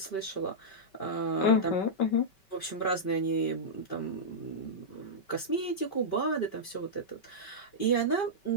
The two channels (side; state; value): right; late; 5.2 ms